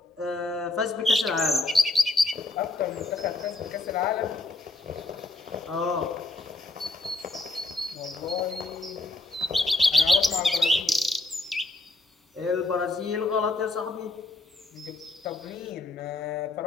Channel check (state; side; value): quieter; right; 3.2 dB